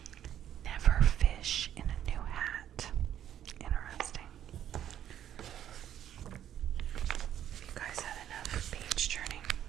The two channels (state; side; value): quieter; left; 10.6 dB